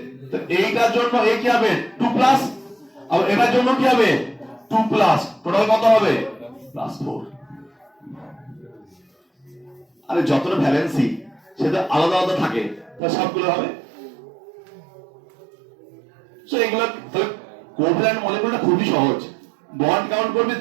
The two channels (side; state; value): left; drops out; at 13.0 s